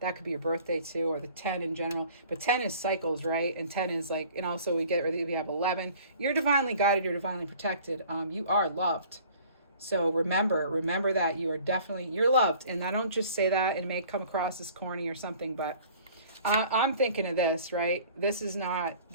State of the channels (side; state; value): both; inverted; correlation -0.50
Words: could be your birthday too, or the 10 in general. But 10 is cycles, right? And 10 is like, and also we have 11. You're divinely guided. You're divinely protected. You are loved. So remember that you're loved. And I don't just say that, and it may come across as corny or something, but I'm thinking of this, right? This is not